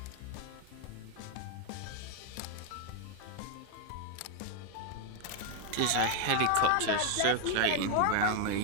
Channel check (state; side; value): different; both; correlation 0.01